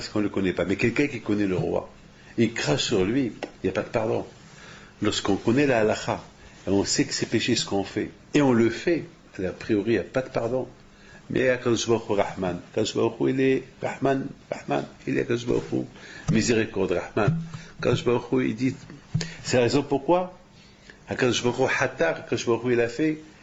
qu'on ne le connaît pas. Mais quelqu'un qui connaît le roi, il crache sur lui, il n'y a pas de pardon. Lorsqu'on connaît la halakha, et on sait que c'est péché ce qu'on fait, et on le fait, a priori, il n'y a pas de pardon. Mais Akadosh Baruch Hu Rahman. Akadosh Baruch Hu, il est Rahman, il est Akadosh Baruch Hu, miséricorde, Rahman. Akadosh Baruch Hu, il dit, c'est la raison pourquoi Akadosh Baruch Hu Hatar, Akadosh Baruch Hu,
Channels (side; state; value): both; identical; correlation 1.00